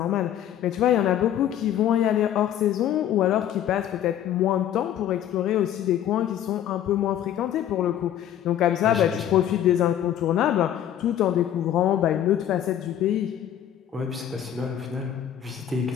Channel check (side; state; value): right; quieter; 10.8 dB